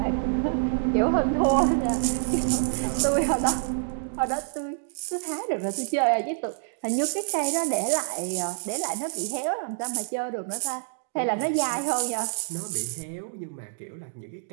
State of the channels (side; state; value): left; silent; digital silence